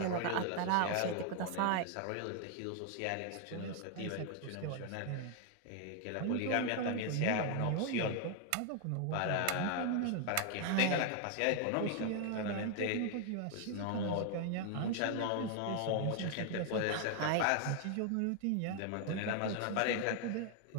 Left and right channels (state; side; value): different; both; correlation 0.00